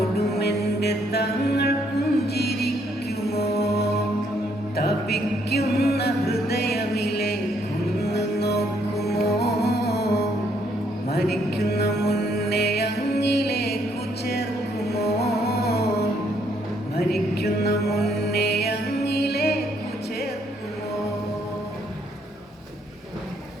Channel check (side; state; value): both; normal; correlation 0.70